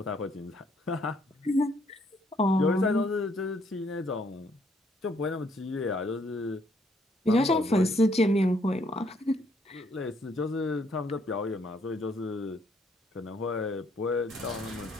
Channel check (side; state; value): both; normal; correlation 0.69